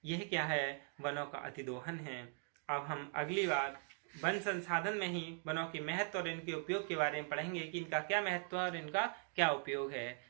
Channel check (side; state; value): left; silent; 51 dB below the other